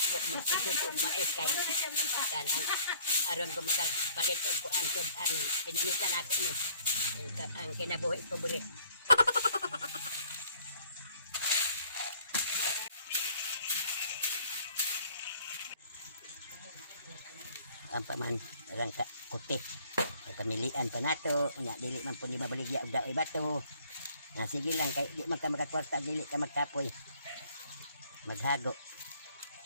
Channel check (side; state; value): both; inverted; correlation -0.58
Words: magsigod og mais kay kanang aron ko makapalit og kuan ko ang pinanitan ako ni ang kinabuhi ko buri. Ang paman orang ka kuti pamilian pa nato nya dili man pud mabaligya og daoy bato. Na sige lang kay di man ka makakwarta dili ka magkapoy maghago.